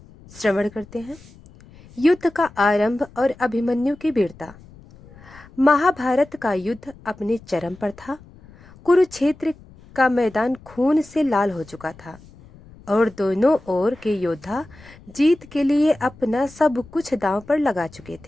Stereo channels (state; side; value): noise; left; rumble, 23 dB below the sound